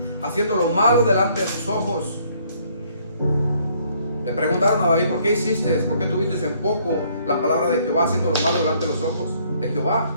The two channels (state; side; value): inverted; both; correlation -0.64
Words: haciendo lo malo delante de sus ojos? Le preguntaron a David, ¿por qué hiciste? ¿Por qué tuviste en poco la palabra de Jehová, haciendo lo malo delante de los ojos de Jehová?